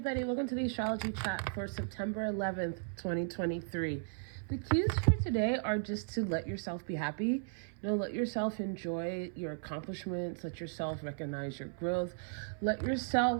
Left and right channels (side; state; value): left; silent; 54 dB below the other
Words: welcome to the Astrology Chat for September 11th, 2023. The cues for today are just to let yourself be happy. Let yourself enjoy your accomplishments, let yourself recognize your growth, let